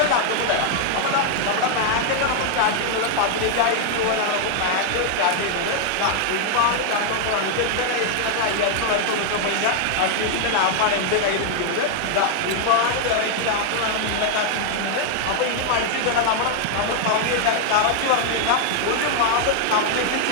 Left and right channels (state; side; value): different; both; correlation 0.00